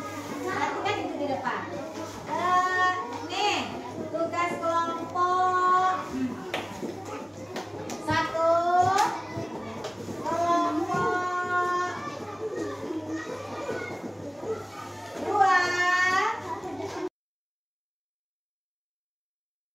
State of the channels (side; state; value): both; identical; correlation 1.00